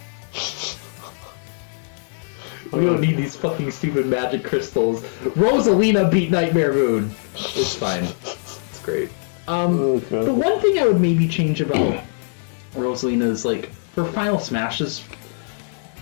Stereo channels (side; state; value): right; silent; digital silence